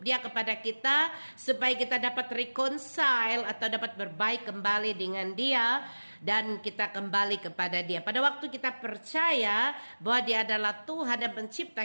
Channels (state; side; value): inverted; both; correlation -1.00